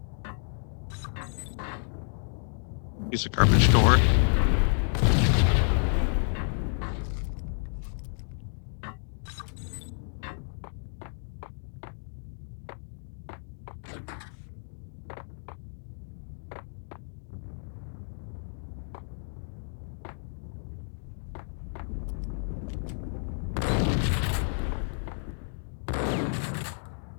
Piece of garbage door.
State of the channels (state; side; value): silent; right; digital silence